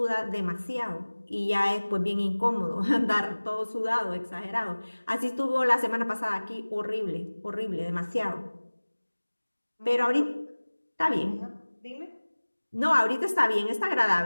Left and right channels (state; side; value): inverted; both; correlation -1.00